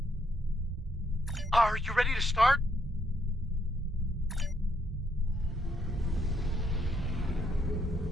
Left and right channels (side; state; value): both; normal; correlation 0.74